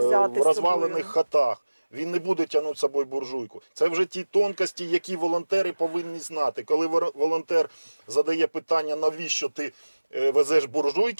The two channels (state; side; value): inverted; both; correlation -1.00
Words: в з розвалених собою. хатах. Він не буде тягнути з собою буржуйку. Це вже ті тонкості, які волонтери повинні знати. Коли волонтер задає питання, навіщо ти везеш